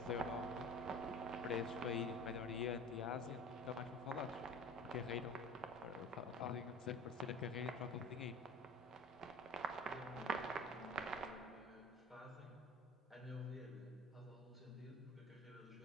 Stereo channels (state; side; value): normal; both; correlation 0.40